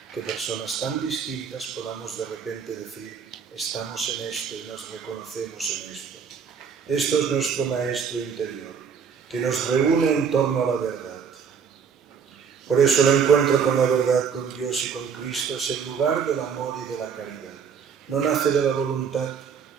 Que personas tan distintas podamos de repente decir, estamos en esto y nos reconocemos en esto. Esto es nuestro Maestro interior, que nos reúne en torno a la verdad. Por eso el encuentro con la verdad, con Dios y con Cristo es el lugar del amor y de la caridad. No nace de la voluntad,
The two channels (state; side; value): quieter; left; 6.6 dB